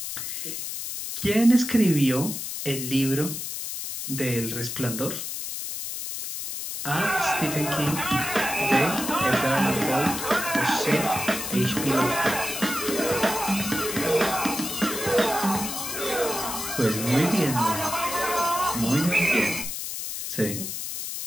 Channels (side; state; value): left; noise; hiss, 5 dB below the sound